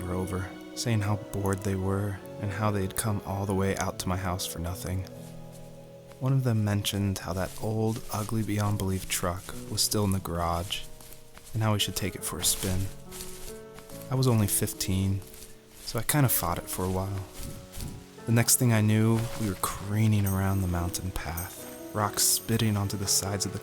over, saying how bored they were and how they'd come all the way out to my house for nothing. One of them mentioned how that old, ugly beyond belief truck was still in the garage, and how we should take it for a spin. I was only 15, so I kind of fought it for a while. The next thing I knew, we were careening around the mountain path, rocks spitting onto the sides of the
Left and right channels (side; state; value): both; identical; correlation 1.00